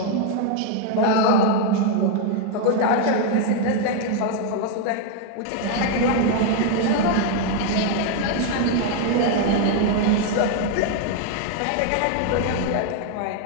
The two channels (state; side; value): different; both; correlation 0.00